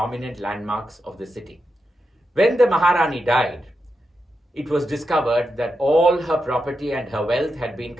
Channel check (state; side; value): normal; both; correlation 0.87